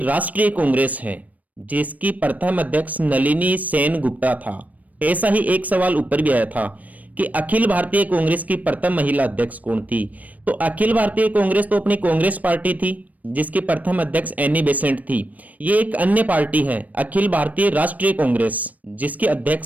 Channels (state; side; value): late; left; 0.074 ms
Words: कांग्रेस है जिसकी प्रथम अध्यक्ष नलिनी सेन गुप्ता था। ऐसा ही एक सवाल ऊपर भी आया था कि अखिल भारतीय कांग्रेस की प्रथम महिला अध्यक्ष कौन थी? तो अखिल भारतीय कांग्रेस तो अपनी कांग्रेस पार्टी थी जिसकी प्रथम अध्यक्ष एनी बेसेंट थी। ये एक अन्य पार्टी है अखिल भारतीय राष्ट्रीय कांग्रेस जिसकी